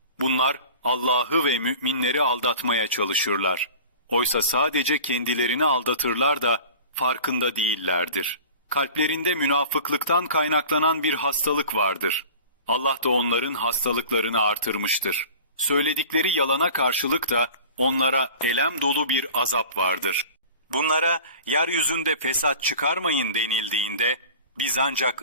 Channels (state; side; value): inverted; both; correlation -0.41